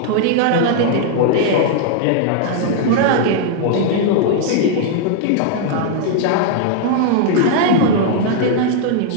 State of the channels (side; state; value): both; different; correlation -0.01